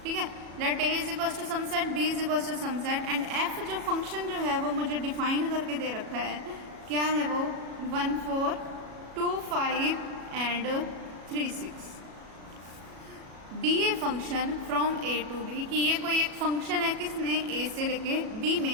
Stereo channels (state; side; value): late; left; 37 ms